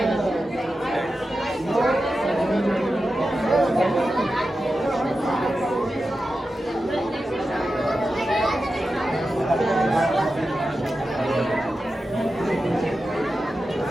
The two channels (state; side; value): normal; both; correlation 0.91